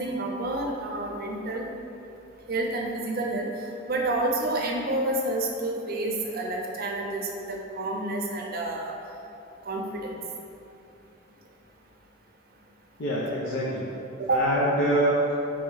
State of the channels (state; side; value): normal; both; correlation 0.12